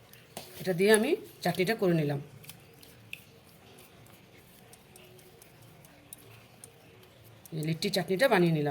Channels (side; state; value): both; identical; correlation 1.00